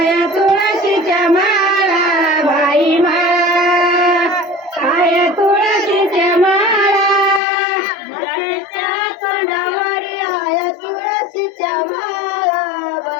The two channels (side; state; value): right; drops out; at 7.4 s